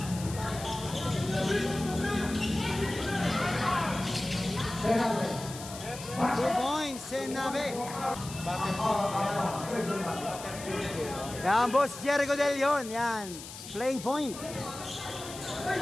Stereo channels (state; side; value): noise; left; hiss, 12 dB below the sound